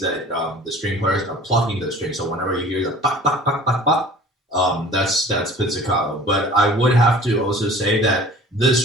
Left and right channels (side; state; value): both; normal; correlation 0.46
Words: that the string players are plucking the string. So whenever you hear the pop, pop, pop, pop, pop, that's pizzicato. But I would have to also say that the